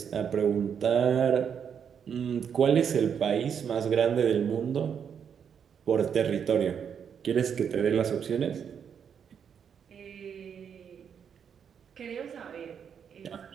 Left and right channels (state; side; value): quieter; left; 7.6 dB